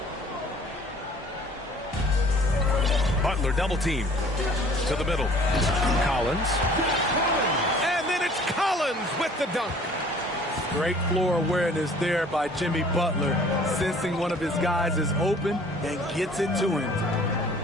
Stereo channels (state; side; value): normal; both; correlation 0.52